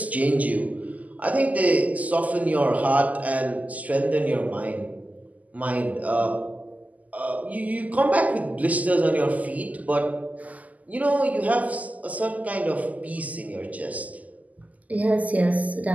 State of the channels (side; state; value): left; late; 0.076 ms